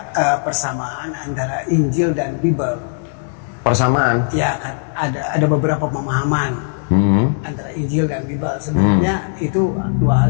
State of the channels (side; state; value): right; silent; 67 dB below the other